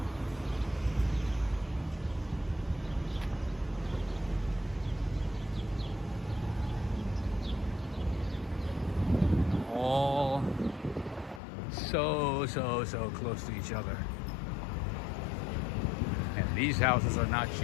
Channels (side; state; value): right; drops out; at 11.4 s